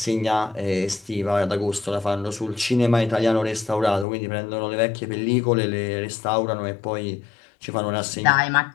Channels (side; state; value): right; drops out; at 4.0 s